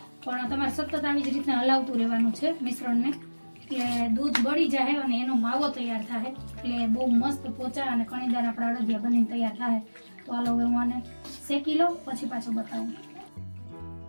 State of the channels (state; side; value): inverted; both; correlation -1.00